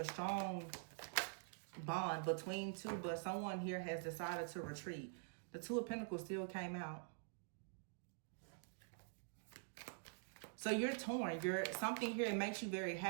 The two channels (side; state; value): left; silent; digital silence